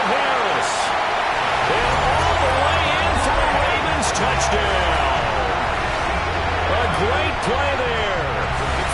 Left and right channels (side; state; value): both; identical; correlation 1.00